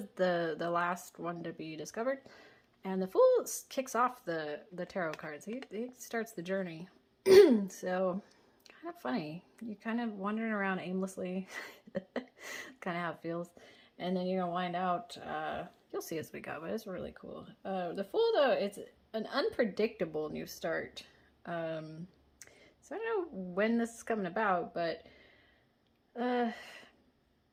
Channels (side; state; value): both; identical; correlation 1.00